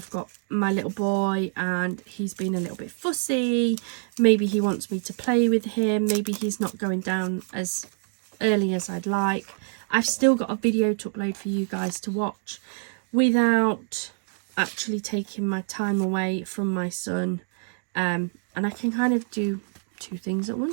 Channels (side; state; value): left; silent; digital silence